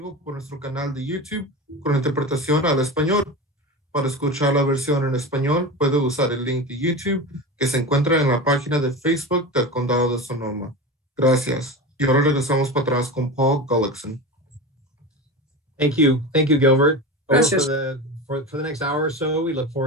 por nuestro canal de YouTube con interpretación al español. Para escuchar la versión en español, puede usar el link de YouTube que se encuentra en la página de Facebook del Condado de Sonoma. Gracias. Y ahora regresamos para atrás con Paul Gullickson. Thank you, Gilbert. Gracias. For the next hour or so, we look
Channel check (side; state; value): both; normal; correlation 0.26